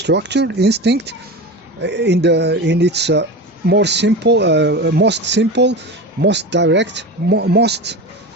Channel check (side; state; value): both; normal; correlation 0.27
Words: instinct, in its most simple, most direct, most